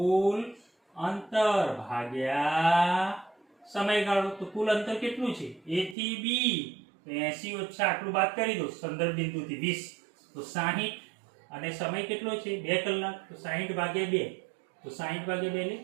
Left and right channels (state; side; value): drops out; left; at 6.0 s